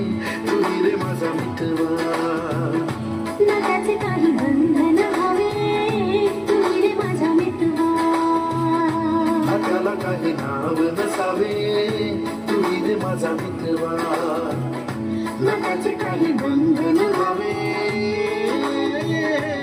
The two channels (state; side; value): identical; both; correlation 1.00